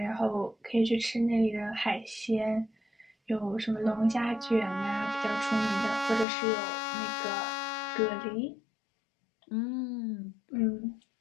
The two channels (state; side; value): drops out; right; at 6.2 s